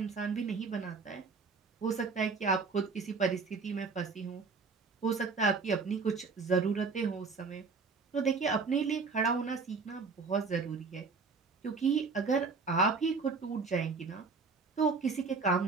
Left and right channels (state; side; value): quieter; left; 4.6 dB